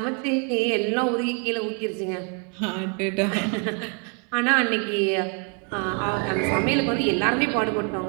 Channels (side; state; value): left; quieter; 38.6 dB